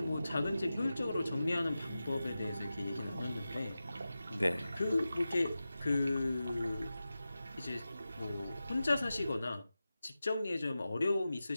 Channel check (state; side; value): inverted; both; correlation -0.94